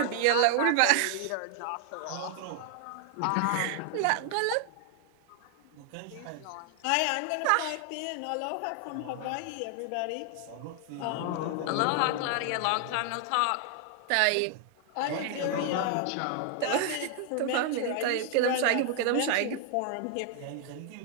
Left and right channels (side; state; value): both; different; correlation 0.00